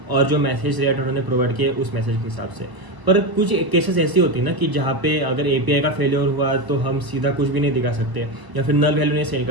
और जो मैसेज रिएक्ट उन्होंने प्रोवाइड किया उस मैसेज के हिसाब से। पर कुछ केसेस ऐसी होती है ना कि जहाँ पे अगर एपीआई का फेलियर हुआ तो हम सीधा कुछ भी नहीं दिखा सकते या फिर नल वैल्यू नहीं सेंड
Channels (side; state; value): left; late; 1.0 ms